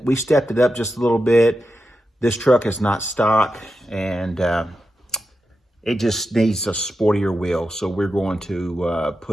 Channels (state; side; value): normal; both; correlation 0.89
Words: We stepped it up just a little bit. This truck is not stock, and it just needs a sportier wheel. So we're going to